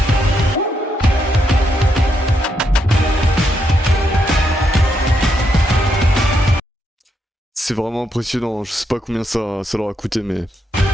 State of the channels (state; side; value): normal; both; correlation 0.79